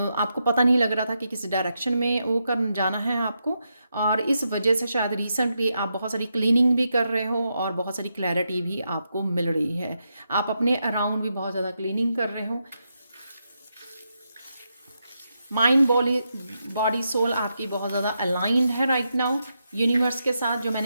पता नहीं लग रहा था कि किस डायरेक्शन में वो कर जाना है आपको, और इस वजह से शायद रिसेंटली आप बहुत सारी क्लीनिंग भी कर रहे हो, और बहुत सारी क्लैरिटी भी आपको मिल रही है। आप अपने अराउंड भी बहुत ज़्यादा क्लीनिंग कर रहे हो। माइंड बॉडी सोल आपकी बहुत ज़्यादा अलाइंड है राइट नाउ यूनिवर्स के साथ। जो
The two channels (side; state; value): both; inverted; correlation -0.84